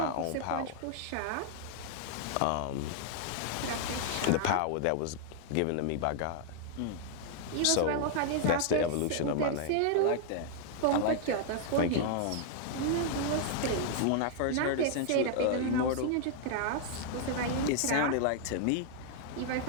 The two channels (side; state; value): both; different; correlation -0.01